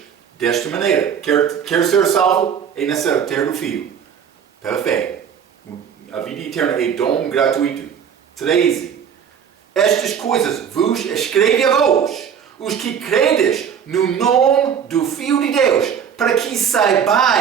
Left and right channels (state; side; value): quieter; left; 7.8 dB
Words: Desta maneira. Quer ser salvo? É necessário ter o Filho. Pela fé. A vida eterna é dom gratuito. 13. Estas coisas vos escrevo a vós, os que credes no nome do Filho de Deus, para que